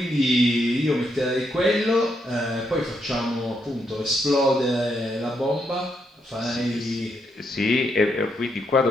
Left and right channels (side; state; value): both; normal; correlation 0.78